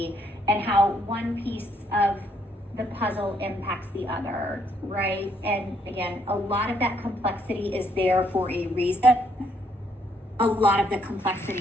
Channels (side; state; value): both; normal; correlation 0.71